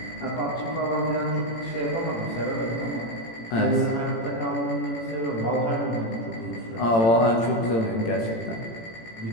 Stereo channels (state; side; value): late; right; 18 ms